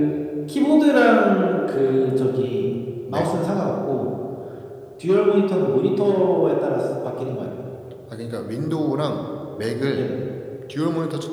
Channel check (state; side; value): identical; both; correlation 1.00